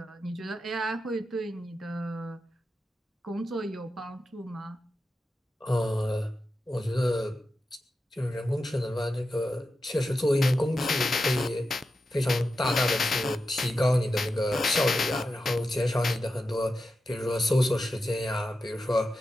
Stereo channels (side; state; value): both; normal; correlation 0.90